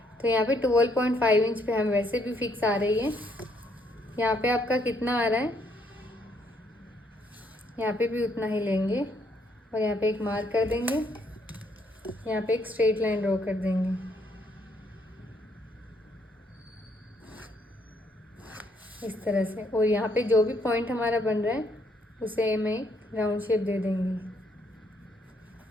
तो यहाँ पे 12.5 इंच पे हम वैसे भी फिक्स आ रही है। यहाँ पे आपका कितना आ रहा है, यहाँ पे भी उतना ही लेंगे और यहाँ पे एक मार्क कर देंगे। यहाँ पे एक स्ट्रेट लाइन ड्रॉ कर देंगे इस तरह से। और यहाँ पे जो भी पॉइंट हमारा बन रहा है उसे हमें राउंड शेप दे देंगे।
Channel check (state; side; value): normal; both; correlation 0.71